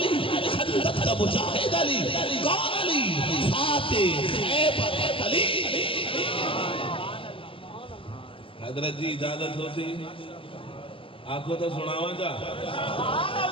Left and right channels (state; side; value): late; right; 0.26 ms